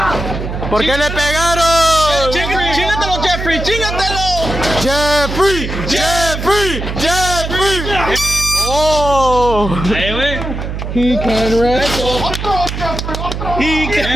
¿Por qué le pegaron? ¡Chingatelo, Jeffrey! ¡Chingatelo! Jeffrey! Jeffrey! Jeffrey! Oh! Ahí, güey. He can wrestle. He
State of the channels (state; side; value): noise; right; hum, 5 dB below the sound